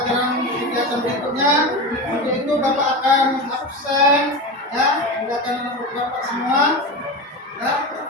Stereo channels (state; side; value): normal; both; correlation 0.23